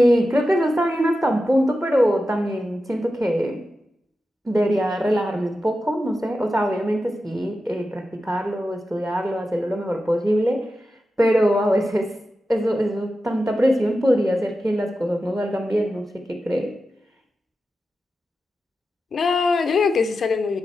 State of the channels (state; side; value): normal; both; correlation 0.91